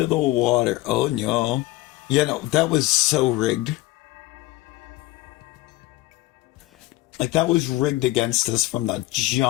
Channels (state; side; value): quieter; right; 18.5 dB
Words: the water. Oh no. Yeah, no, that was so rigged. Like, that was rigged against us from the